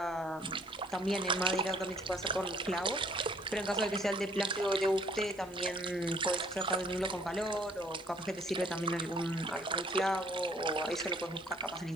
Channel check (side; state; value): right; noise; hiss, 28 dB below the sound